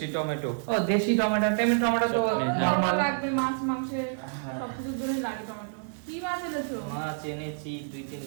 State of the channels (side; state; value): left; silent; digital silence